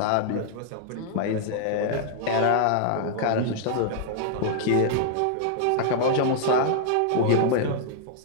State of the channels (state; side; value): different; both; correlation -0.01